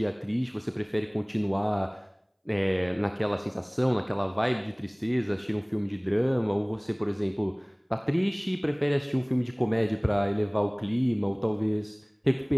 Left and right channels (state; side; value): identical; both; correlation 1.00